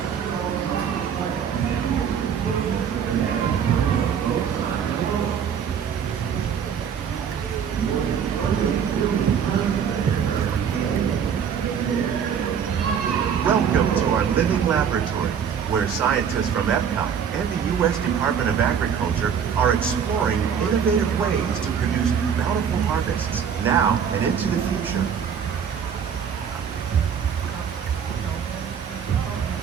Welcome to our living laboratory, where scientists from Epcot and the U.S. Department of Agriculture are exploring innovative ways to produce bountiful harvests now and into the future.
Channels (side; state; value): left; quieter; 7.7 dB